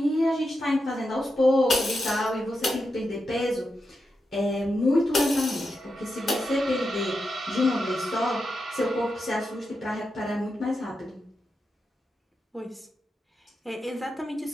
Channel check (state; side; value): normal; both; correlation 0.87